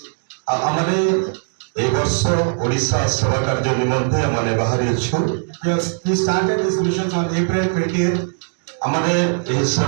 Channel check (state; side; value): silent; left; digital silence